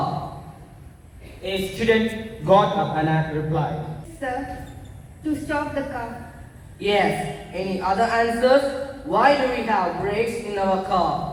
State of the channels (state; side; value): identical; both; correlation 1.00